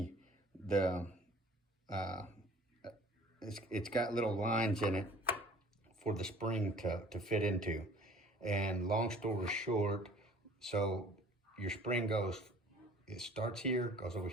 it's got little lines in it for the spring to fit into. And long story short, so your spring it starts here, goes over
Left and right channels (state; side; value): normal; both; correlation 0.51